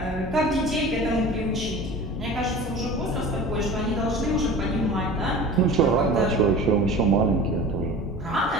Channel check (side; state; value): both; normal; correlation 0.38